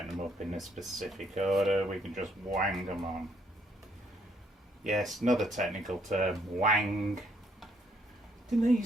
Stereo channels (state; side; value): normal; both; correlation 0.69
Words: them up in a specific order. We can just wang them on. Yes, another technical term, wang. Didn't they